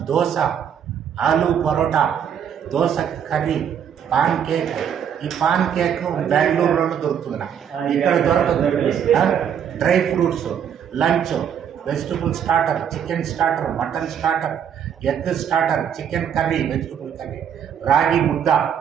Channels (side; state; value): left; quieter; 8.5 dB